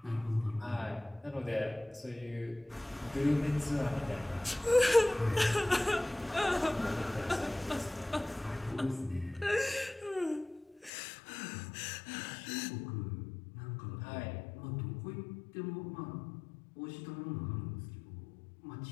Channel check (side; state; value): right; drops out; at 10.9 s